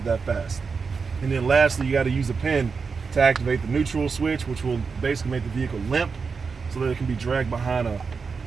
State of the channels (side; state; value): left; quieter; 5.2 dB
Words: that fast. And then lastly, you got to use a pin to activate the neutral switch, which will basically make the vehicle limp so that it can be dragged behind a